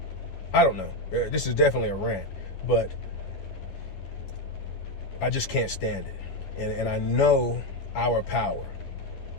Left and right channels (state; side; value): late; right; 11 ms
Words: I don't know. This is definitely a rant, but I just can't stand it. And I know our power.